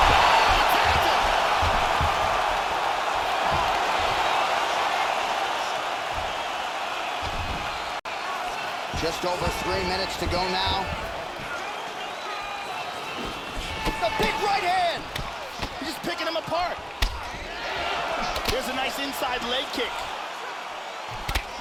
Just over 3 minutes to go now. The big right hand! He's just picking him apart. There's a nice inside leg kick.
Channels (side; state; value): both; identical; correlation 1.00